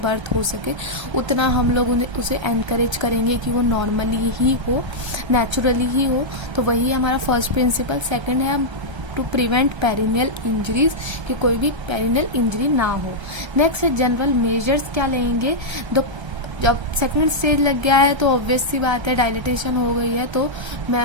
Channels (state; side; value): late; left; 1.3 ms